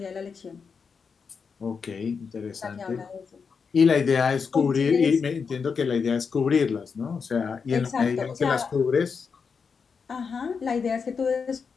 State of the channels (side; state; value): right; quieter; 5.7 dB